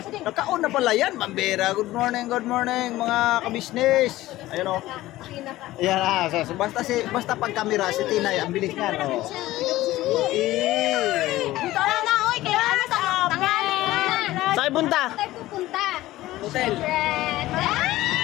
din! Nagkaon na pala yan, Mambera. Good morning, mga ka-business. Ayun o. Ayan basta pag kamera, si Tinay, ang bilis niya, no? Dito na, oy! Kaya ano sa tangali na! Saan punta? Tayo pupunta! Hotel.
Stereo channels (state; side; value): quieter; right; 16.5 dB